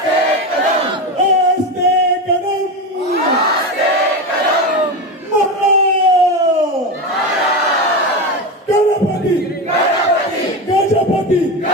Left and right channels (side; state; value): both; normal; correlation 0.19